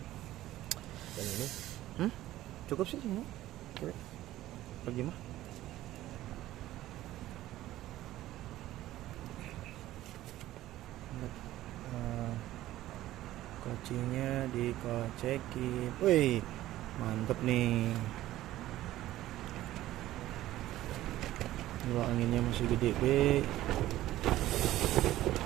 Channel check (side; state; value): left; quieter; 14.9 dB